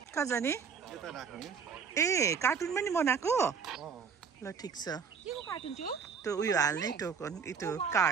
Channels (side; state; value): left; quieter; 6.2 dB